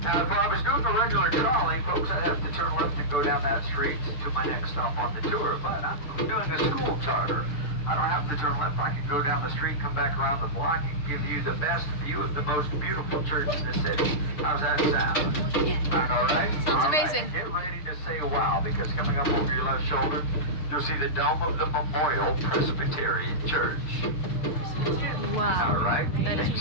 if I was doing a regular trolley, folks, I'd have to turn left and go down that street to my next stop on the tour. But I'm doing a school charter. I don't have to turn left. I can go down the street, come back around the block, and give you the best view of the most beautiful church in the city. How's that sound? Yeah. Sound all right? Sounds All right. amazing. Get ready to say wow, because coming up over your left shoulder, you'll see the dome of the Memorial Presbyterian Church. Wow. All right? That is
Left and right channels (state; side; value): late; right; 6.6 ms